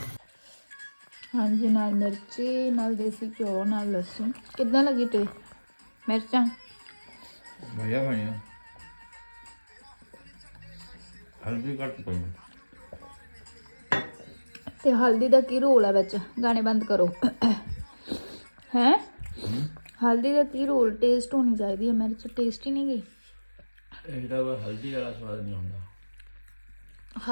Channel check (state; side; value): inverted; both; correlation -1.00